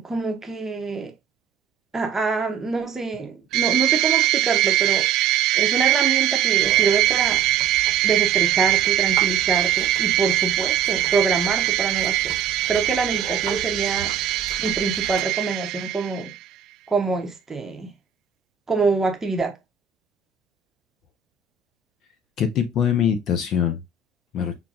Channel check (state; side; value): quieter; left; 6.8 dB